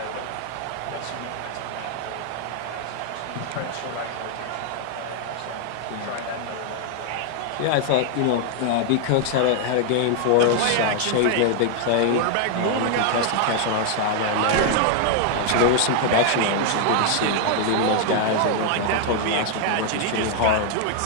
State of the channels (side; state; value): both; different; correlation 0.00